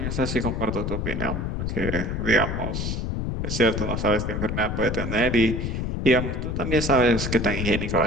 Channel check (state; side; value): noise; left; rumble, 2 dB below the sound